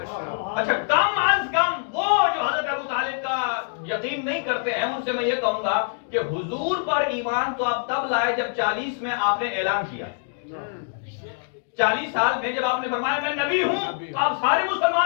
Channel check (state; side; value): silent; right; digital silence